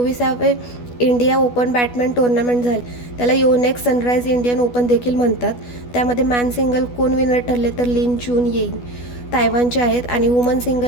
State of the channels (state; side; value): late; right; 12 ms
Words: इंडिया ओपन बॅडमिंटन टुर्नामेंट झाले. त्याला योनेक्स सनराइज इंडियन ओपन देखील म्हणतात. त्यामध्ये मॅन सिंगल कोण विनर ठरले? तर लिन चून येईंग तायवानचे आहेत आणि वुमन